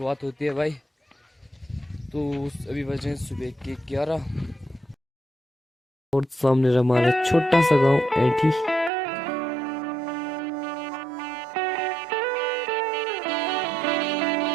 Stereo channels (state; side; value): drops out; left; at 8.9 s